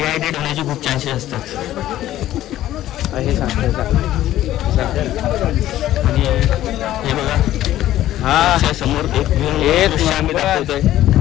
होण्याचे खूप चान्सेस असतात हे सांगतात. आणि हे बघा हा समोर एक आम्ही दाखवतोय.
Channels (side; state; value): right; quieter; 13.6 dB